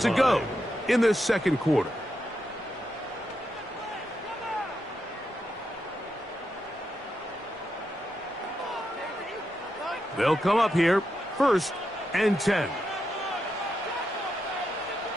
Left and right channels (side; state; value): both; normal; correlation 0.84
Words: go in this second quarter. They'll come up here, 1st and 10.